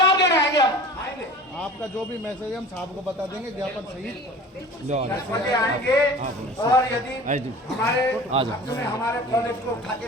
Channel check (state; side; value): normal; both; correlation 0.41